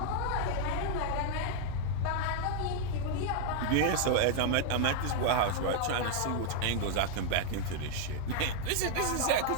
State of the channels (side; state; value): both; different; correlation 0.00